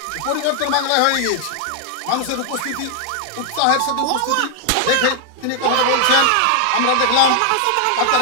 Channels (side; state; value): both; different; correlation 0.00